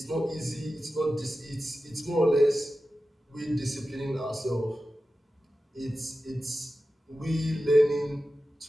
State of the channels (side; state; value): both; normal; correlation 0.93